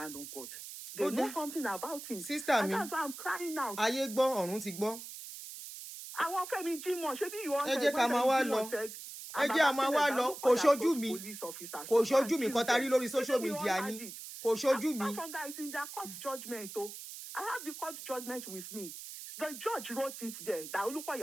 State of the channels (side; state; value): right; noise; hiss, 11 dB below the sound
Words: of God? They know something about him. Sister and mi. That's why I'm crying out. Ayé gbọ́, ọ̀run ti gbọ́. I want Femi Jimoh. Ṣebí you want Ẹ jẹ́ ká máa wá lọ. Ẹ jẹ́ a máa wá lọ. Kò ṣojú mi. Kò ṣojú mi kan tarí lórí social media ni. Kò ṣojú mi. That guy is in their court judgment. Oh. I have the court judgment with me. The judge wrote it there that